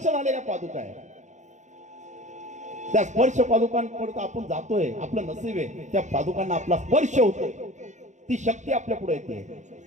झालेल्या पादुका आहे, त्या स्पर्श पादुकांपर्यंत आपण जातोय, आपलं नसीब आहे त्या पादुकांना आपला स्पर्श होतोय, ती शक्ती आपल्या पुढे येते,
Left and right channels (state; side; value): late; left; 0.35 ms